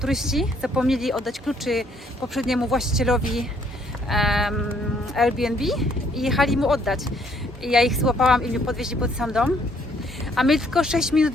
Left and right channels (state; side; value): normal; both; correlation 0.66